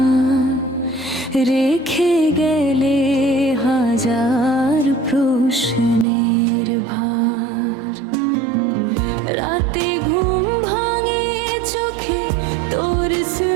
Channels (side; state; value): left; drops out; at 6.1 s